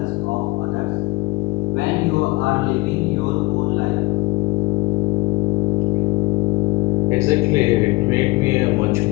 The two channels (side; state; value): right; quieter; 23.1 dB